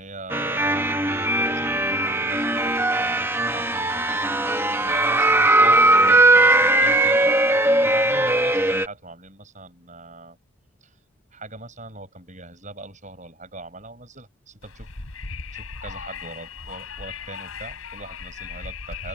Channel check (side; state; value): both; normal; correlation 0.51